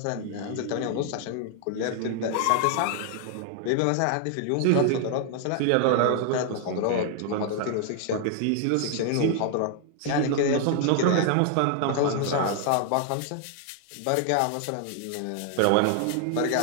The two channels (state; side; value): different; both; correlation 0.00